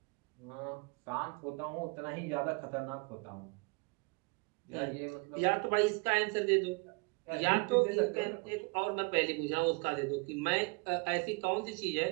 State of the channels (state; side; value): quieter; left; 30.7 dB